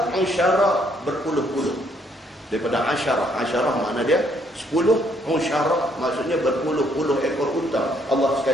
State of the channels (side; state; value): both; normal; correlation 0.68